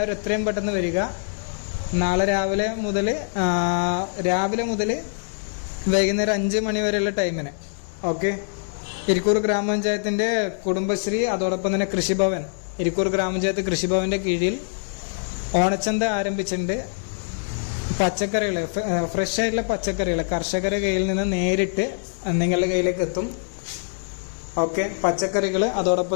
എത്രയും പെട്ടെന്ന് വരിക. നാളെ രാവിലെ മുതൽ വൈകുന്നേരം 5 മണി വരെയുള്ള ടൈമിന്. ഓക്കെ. ഇരിക്കൂർ ഗ്രാമപഞ്ചായത്തിൻ്റെ കുടുംബശ്രീ, അതോടൊപ്പം തന്നെ കൃഷിഭവൻ, ഇരിക്കൂർ ഗ്രാമപഞ്ചായത്ത് കൃഷിഭവൻ്റെ കീഴിൽ ഓണച്ചന്ത ആരംഭിച്ചിട്ടുണ്ട്. പച്ചക്കറികൾ, ഫ്രഷ് ആയിട്ടുള്ള പച്ചക്കറികൾ കർഷകരുടെ കയ്യിൽ നിന്ന് നേരിട്ട് നിങ്ങളുടെ കയ്യിലേക്ക് എത്തും. ഓക്കെ. പച്ചക്കറികൾ,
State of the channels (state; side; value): silent; right; 59 dB below the other